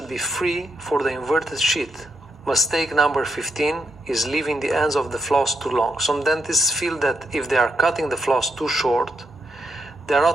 be free for the inverted sheet. Mistake number 15 is leaving the ends of the floss too long. Some dentists feel that if they are cutting the floss too short, they are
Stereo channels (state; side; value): normal; both; correlation 0.81